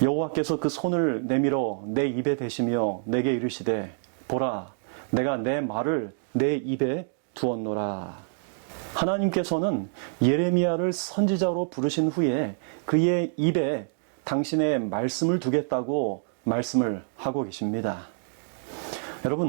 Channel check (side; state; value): left; silent; digital silence